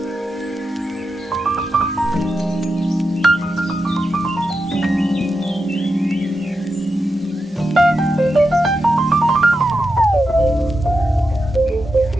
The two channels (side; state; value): both; normal; correlation 0.88